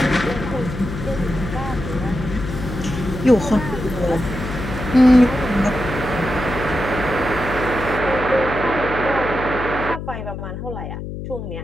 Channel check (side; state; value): left; noise; hum, 8 dB below the sound